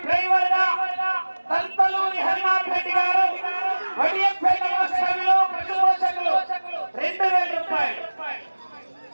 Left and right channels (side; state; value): both; inverted; correlation -1.00